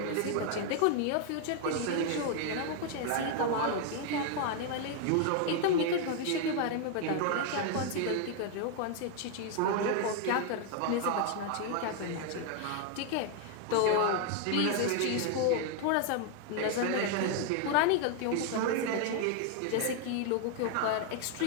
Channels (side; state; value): both; different; correlation 0.00